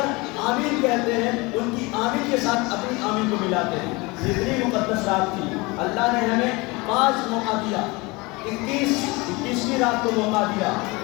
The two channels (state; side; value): quieter; right; 24.8 dB